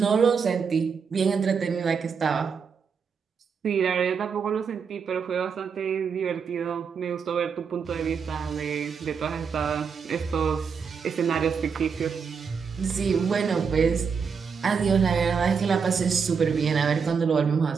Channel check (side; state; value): left; quieter; 6.1 dB